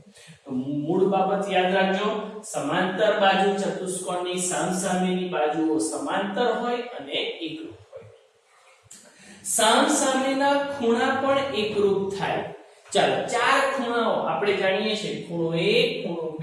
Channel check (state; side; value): identical; both; correlation 1.00